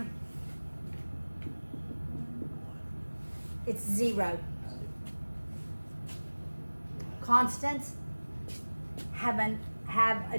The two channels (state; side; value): inverted; both; correlation -1.00